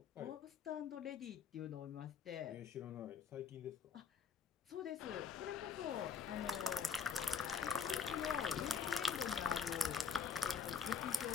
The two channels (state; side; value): quieter; right; 6.4 dB